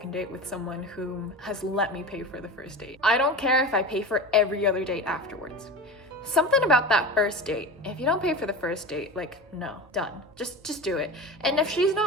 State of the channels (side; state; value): both; normal; correlation 0.29